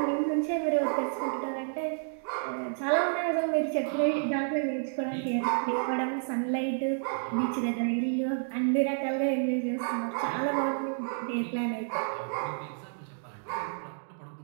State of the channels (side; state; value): left; silent; digital silence